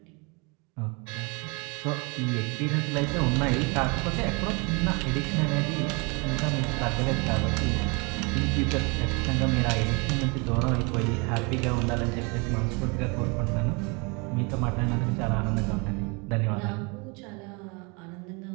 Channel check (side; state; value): left; quieter; 30.2 dB